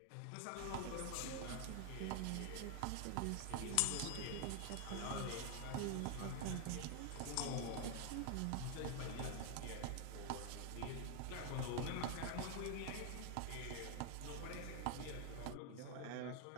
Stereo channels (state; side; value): different; both; correlation 0.01